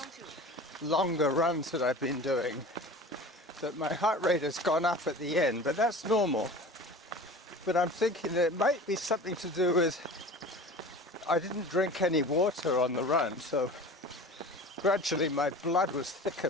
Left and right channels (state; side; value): normal; both; correlation 0.38